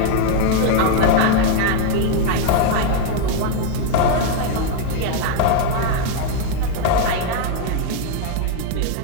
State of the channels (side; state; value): both; different; correlation 0.00